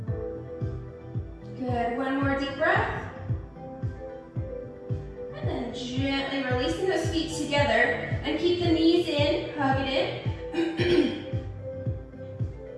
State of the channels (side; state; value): both; identical; correlation 1.00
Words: one more deep breath. And then gently releasing those feet together and keep the knees in, hug it in.